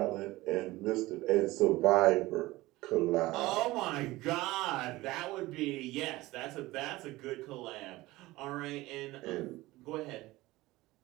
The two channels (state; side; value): quieter; left; 19.0 dB